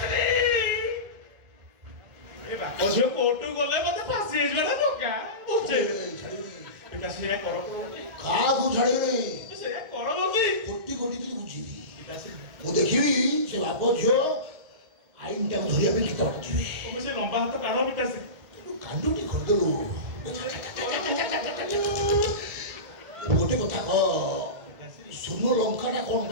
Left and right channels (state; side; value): late; left; 1.7 ms